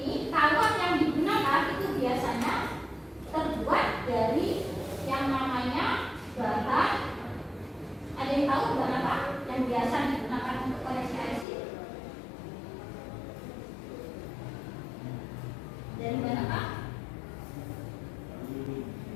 kawat yang digunakan itu biasanya terbuat dari yang namanya bahan. Ada yang tahu bahan apa yang biasa digunakan untuk koneksi IC? Dari bahan apa?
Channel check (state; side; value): drops out; right; at 11.5 s